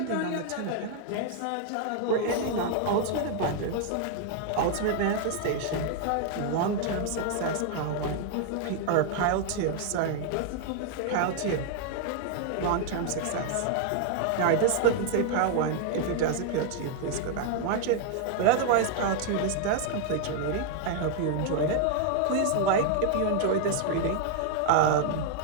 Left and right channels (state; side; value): different; both; correlation 0.00